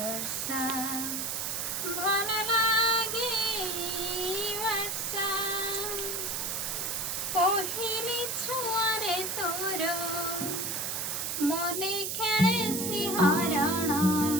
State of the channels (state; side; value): noise; right; hiss, 2 dB below the sound